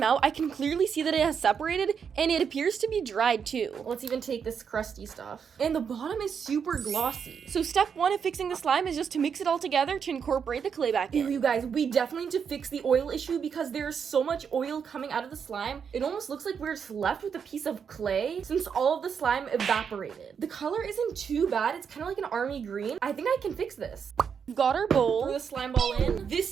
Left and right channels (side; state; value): left; quieter; 6.9 dB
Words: out, I can clearly see that it has separated and it appears to be dried too. Let's even take this crusty stuff. And the bottom is super glossy. So step 1 of fixing the slime is just to mix it all together to incorporate the clay back in. Ew, you guys, we definitely need to fix the oil issue because there's so much oil coming out of the slime. It almost looks like we're just left with a piece of clay since all of the slime evaporated. The color isn't too bad. It's kind of like an army green. I think I can fix this. We've got our bowl. Throw the slime ball in. This